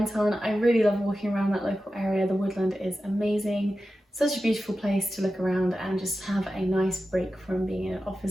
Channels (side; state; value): both; normal; correlation 0.93